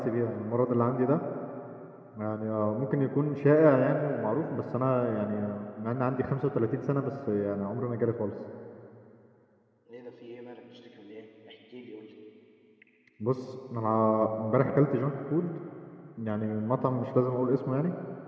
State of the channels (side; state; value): both; identical; correlation 1.00